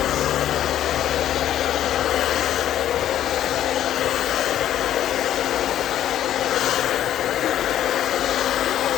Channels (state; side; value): quieter; right; 11.5 dB